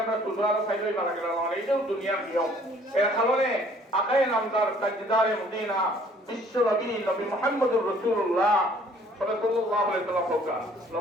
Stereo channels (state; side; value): normal; both; correlation 0.58